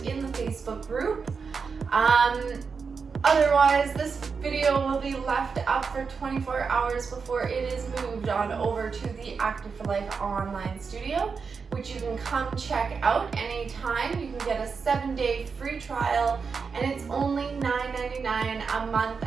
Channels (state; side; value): quieter; left; 5.4 dB